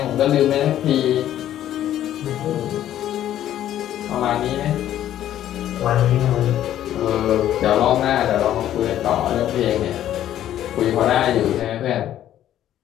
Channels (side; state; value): right; quieter; 11.9 dB